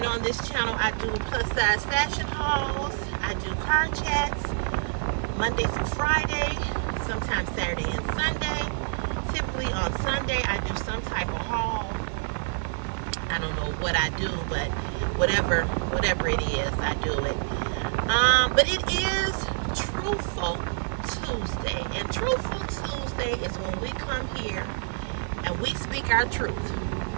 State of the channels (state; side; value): silent; left; 60 dB below the other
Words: on this channel, I do plus-size fashion hauls. I do car chats Monday through Friday, sometimes Saturday and Sunday. Typically on Sunday, I do some type of haul. I don't know what I do, but whatever it is, I do it. But it is Truthful Tuesday. And Truthful Tuesday is when we come here and we speak our truth.